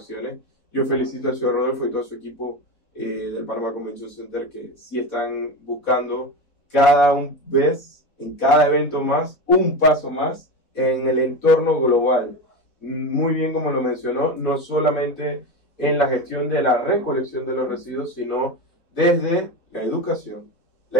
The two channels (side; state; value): right; late; 4.1 ms